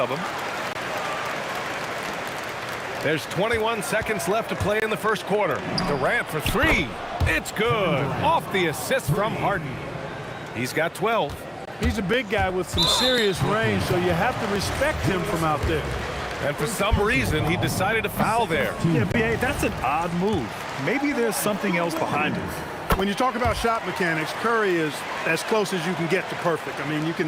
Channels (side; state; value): both; identical; correlation 1.00